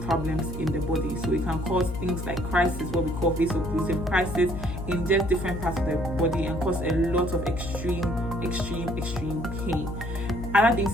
problems in the body. So it can cause things like crisis, what we call vaso-occlusive crisis, in just different parts of the body, and cause a lot of extreme pain. Other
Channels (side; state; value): left; noise; hum, 7 dB below the sound